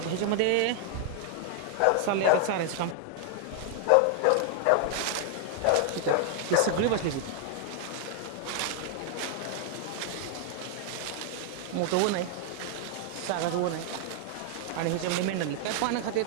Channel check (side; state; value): both; different; correlation 0.00